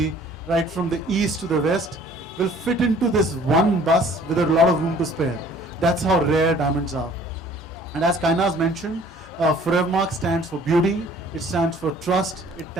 right from the east to the west, will fit into this one bus with a lot of room to spare. That's how rare diamonds are. And as Kainaz mentioned, Forevermark stands for beauty, it stands for trust,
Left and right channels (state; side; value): normal; both; correlation 0.54